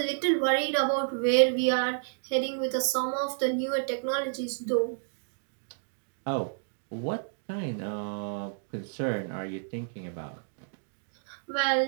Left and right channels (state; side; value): silent; left; digital silence